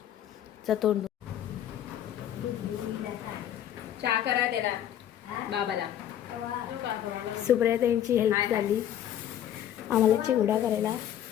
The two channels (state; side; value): quieter; right; 10.8 dB